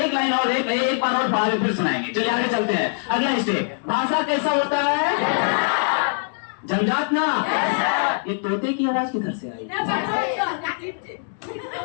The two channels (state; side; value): silent; right; digital silence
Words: लाइन और एक बार और बाद में फिर सुनाएंगे। चलिए आगे चलते हैं। अगला स्टेप, भाषा कैसा होता है? जन्मजात ना। ये तोते की आवाज किधर से आई?